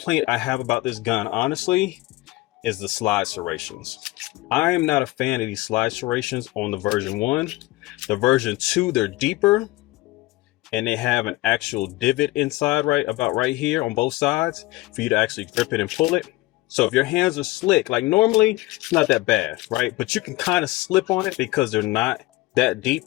I have about this gun, honestly, is the slide serrations. I am not a fan of these slide serrations on the version 1. The version 2, they're deeper, and they have an actual divot inside right here on both sides for you to actually grip it and pull it. So if your hands are slick, like normally, it's not that bad, right? But you can kind of slip on it because they're not that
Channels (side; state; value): right; quieter; 20.0 dB